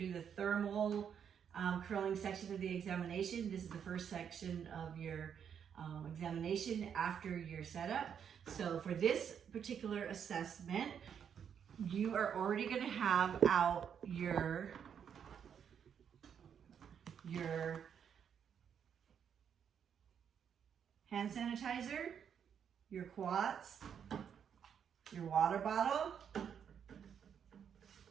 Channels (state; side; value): quieter; left; 8.0 dB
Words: the thermal curling section of the examination. This is the first section of your examination after your setup. So for this particular assessment, you are already gonna have out your hand sanitizer, your quats, your water bottle,